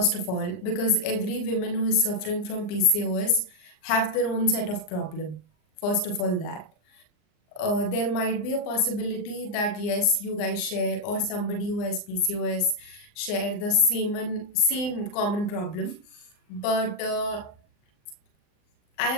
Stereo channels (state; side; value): late; right; 39 ms